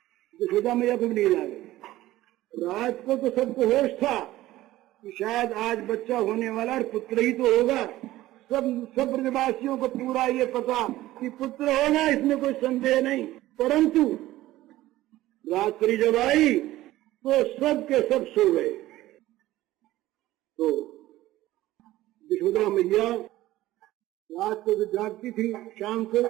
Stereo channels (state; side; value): quieter; left; 15.9 dB